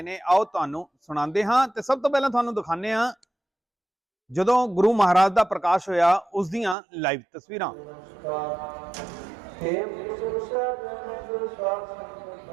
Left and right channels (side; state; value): left; drops out; at 6.8 s